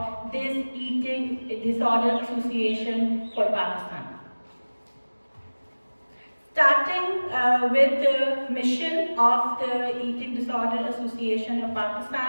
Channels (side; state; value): both; inverted; correlation -1.00